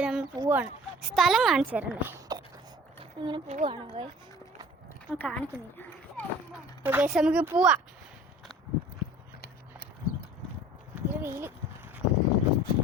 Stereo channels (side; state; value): both; normal; correlation 0.47